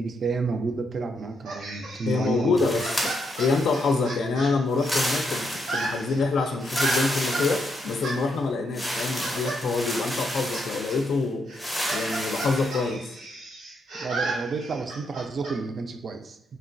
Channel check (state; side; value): normal; both; correlation 0.78